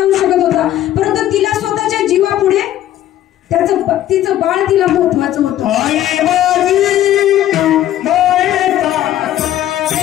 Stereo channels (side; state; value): right; quieter; 12.7 dB